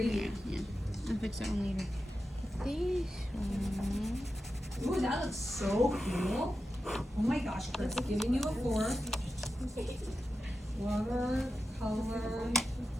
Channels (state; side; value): normal; both; correlation 0.90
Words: Yeah, I'll fix that one later. This one. Ooh, that looks so cool. Oh my gosh, Chris, giving you a 4. Watercolor